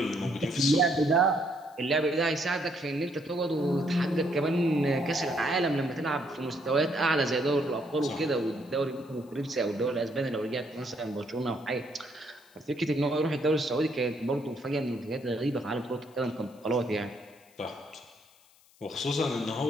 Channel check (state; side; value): noise; left; hiss, 29 dB below the sound